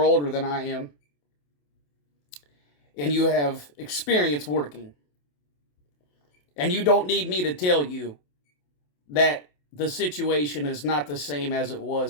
older than I am, and you have experience working. And you don't need me to tell you that the situation is not the same as it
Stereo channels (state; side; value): late; right; 27 ms